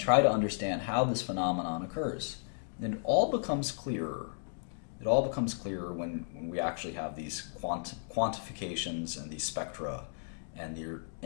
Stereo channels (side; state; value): right; silent; digital silence